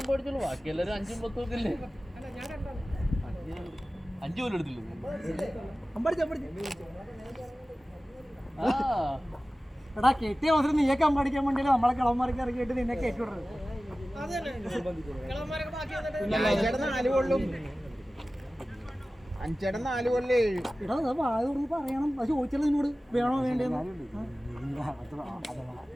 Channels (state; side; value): normal; both; correlation 0.96